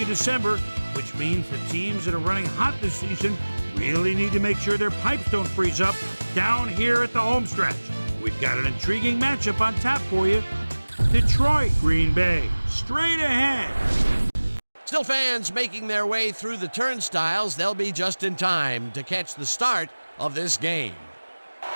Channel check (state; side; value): inverted; both; correlation -1.00